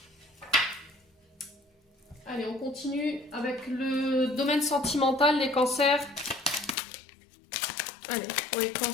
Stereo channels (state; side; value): drops out; right; at 6.8 s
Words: Allez, on continue avec le domaine sentimental, les cancers. Allez, pour les